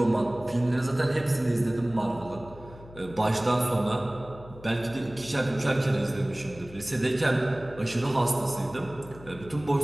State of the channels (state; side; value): noise; left; hum, 18 dB below the sound